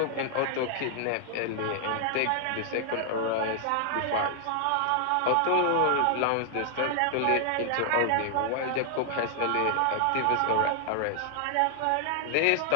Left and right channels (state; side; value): different; both; correlation 0.00